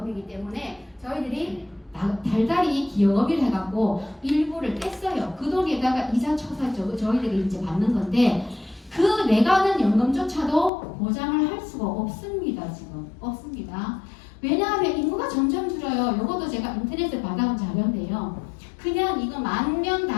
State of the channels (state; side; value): drops out; right; at 10.7 s